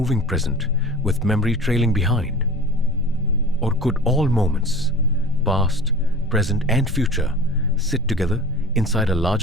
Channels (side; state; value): both; normal; correlation 0.38